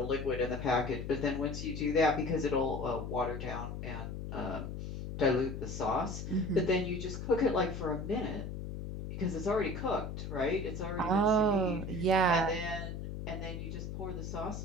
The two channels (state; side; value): noise; left; hum, 6 dB below the sound